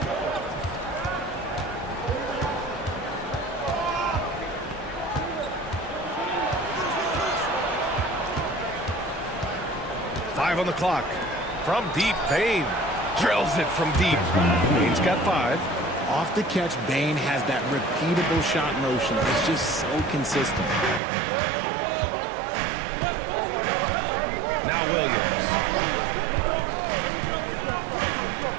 Five on the clock. From deep, Bane drills it from deep. Bane's got 5. Off the catch, Bane has that repeatable shot motion. It's just so consistent. Now Williams.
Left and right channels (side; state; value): left; drops out; at 21.0 s